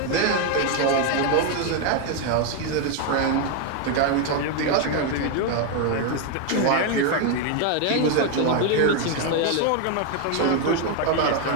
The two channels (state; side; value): different; both; correlation 0.01